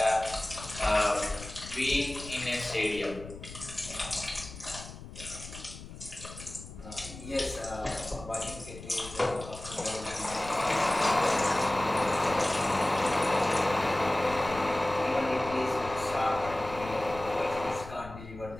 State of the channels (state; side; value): noise; left; rumble, 14 dB below the sound